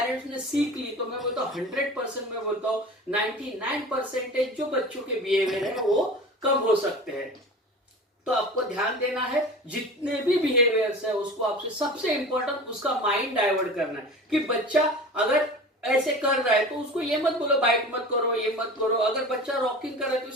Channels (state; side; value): normal; both; correlation 0.36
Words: ने सीख ली तो मैं बोलता हूँ 100%, मैं बोलता हूँ 99% जो बच्चों के बिहेवियर है वो कम हो सकते हैं। तो आपको ध्यान देना है, जितने भी बिहेवियर्स है उसको आपसे सबसे इंपॉर्टेंट उसका माइंड डाइवर्ट करना है। कि बच्चा अगर ऐसे कर रहा है तो उसको ये मत बोलो बाइट मत करो, ये मत करो। अगर बच्चा रॉकिंग कर रहा है तो